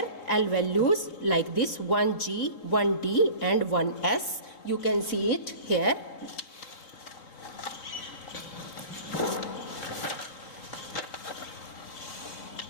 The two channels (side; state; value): right; late; 3.8 ms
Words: L values like this 1G, 1D and 1S. You can see it here.